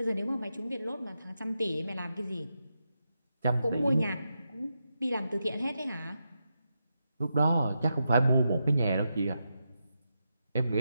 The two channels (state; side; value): inverted; both; correlation -0.86